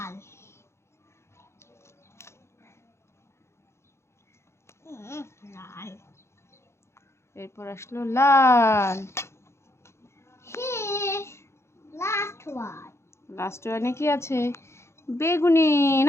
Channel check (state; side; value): late; right; 0.13 ms